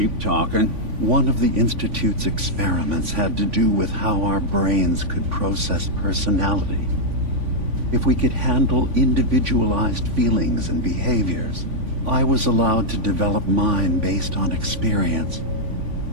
talking. One of the Institute's experiments had to do with how our brains could process personality. If we could handle individualized feelings and behaviors, I was allowed to develop mine based on experience.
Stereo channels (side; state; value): left; late; 3.5 ms